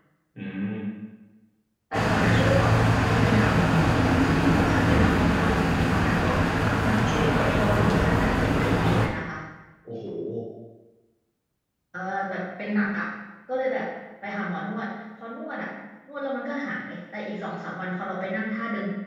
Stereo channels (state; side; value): identical; both; correlation 1.00